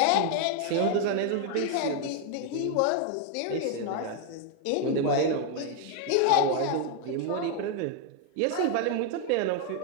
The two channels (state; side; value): different; both; correlation 0.01